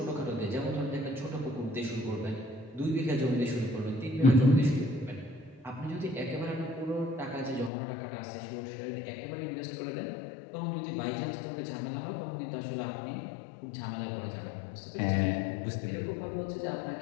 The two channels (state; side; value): drops out; right; at 7.7 s